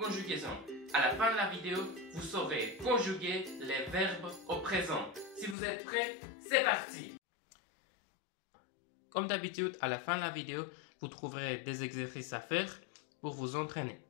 À la fin de la vidéo, vous saurez conjuguer les verbes au présent. Si vous êtes prêts, c'est parti! Comme d'habitude, à la fin de la vidéo, vous trouverez des exercices à faire pour vous entraîner.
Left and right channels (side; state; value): right; drops out; at 5.6 s